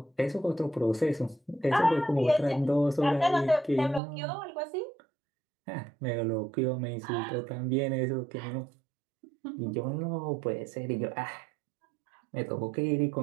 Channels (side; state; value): left; drops out; at 4.0 s